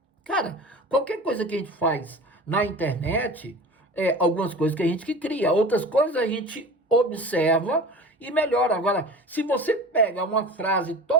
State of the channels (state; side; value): normal; both; correlation 0.36